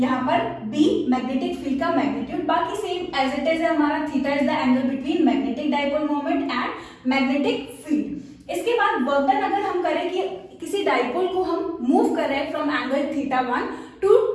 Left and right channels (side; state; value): both; identical; correlation 1.00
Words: पर b मैग्नेटिक फील्ड का मैग्नीट्यूड, बाकी सेम एज इट इज है हमारा। Theta is the angle between magnetic dipole moment and magnetic field. इसके बाद वर्क डन अगर हम करें कि किसी डाइपोल को हम मूव कर रहे हैं from angle theta 1 to